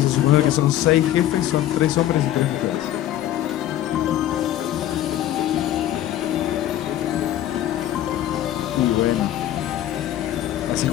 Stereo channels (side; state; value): right; quieter; 12.6 dB